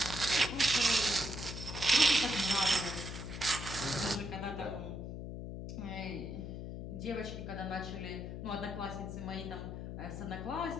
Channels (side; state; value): left; noise; hum, 7 dB below the sound